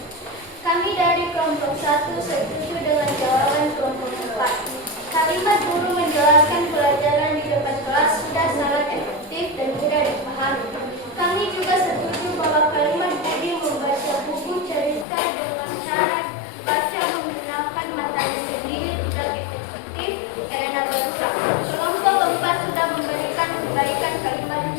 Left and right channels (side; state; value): right; drops out; at 15.1 s